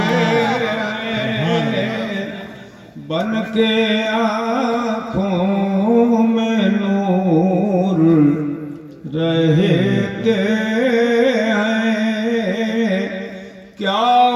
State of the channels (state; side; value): identical; both; correlation 1.00